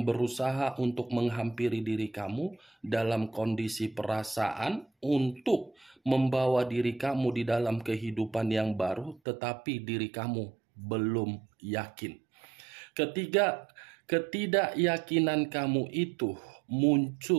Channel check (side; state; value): left; drops out; at 9.2 s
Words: berusaha untuk menghampiri diri kamu dalam kondisi perasaan untuk membawa diri kamu di dalam kehidupan yang baru, tetapi diri kamu belum yakin. Ketidakyakinan kamu itu